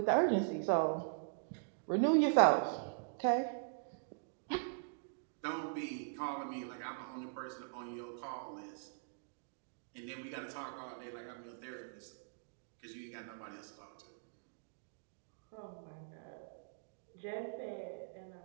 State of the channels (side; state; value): left; silent; digital silence